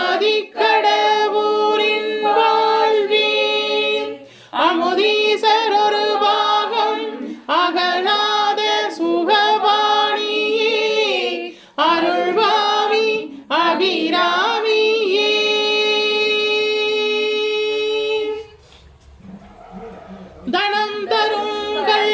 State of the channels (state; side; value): identical; both; correlation 1.00